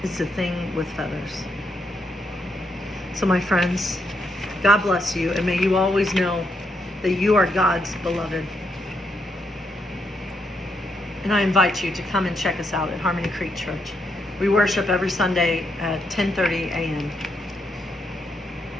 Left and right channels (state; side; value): normal; both; correlation 0.78